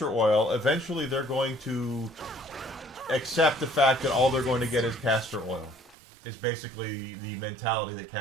oil, eventually they're going to accept the fact that all they're going to get is castor oil. Is basically the mentality that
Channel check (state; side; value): drops out; left; at 6.0 s